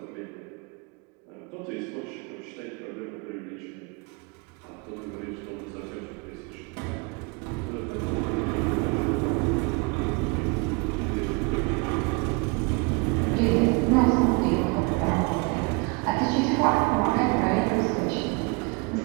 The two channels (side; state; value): left; quieter; 30.1 dB